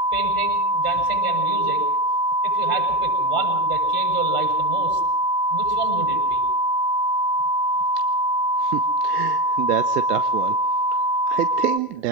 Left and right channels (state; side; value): late; right; 1.3 ms